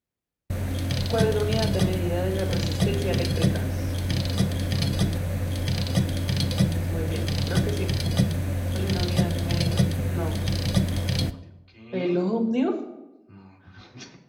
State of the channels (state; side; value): identical; both; correlation 1.00